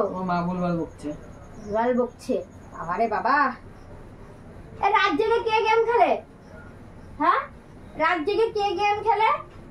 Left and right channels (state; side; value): identical; both; correlation 1.00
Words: তোমার মা ভুলভাল বকছে। আরে বাবা, রাত জেগে কে গেম খেলে? হ্যাঁ, রাত জেগে কে গেম খেলে?